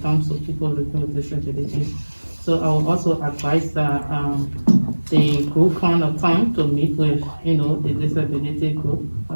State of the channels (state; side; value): inverted; both; correlation -1.00